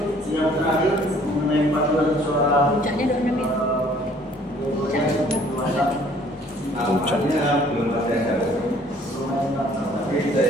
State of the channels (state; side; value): normal; both; correlation 0.58